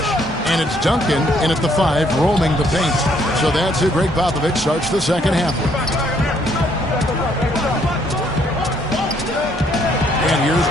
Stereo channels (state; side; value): normal; both; correlation 0.68